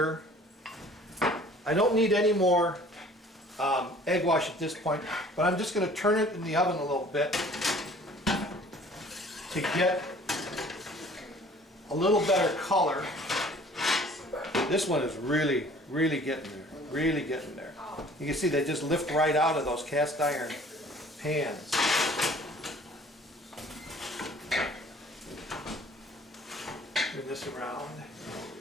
I don't need any more egg wash at this point, but I'm just going to turn it in the oven a little bit to get a little better color. This one is really getting there, really getting there. You can see they just lift right out of those cast iron pans. Turn this around.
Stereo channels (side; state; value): both; normal; correlation 0.52